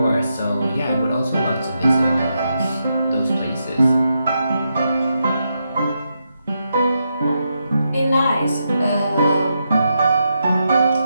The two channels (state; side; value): inverted; both; correlation -0.84